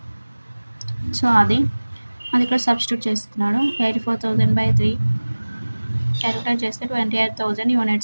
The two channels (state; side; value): inverted; both; correlation -1.00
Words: సో అది ఇక్కడ సబ్స్టిట్యూట్ చేస్తున్నాడు. 84,000 by 3 క్యాలిక్యులేట్ చేస్తే 28,000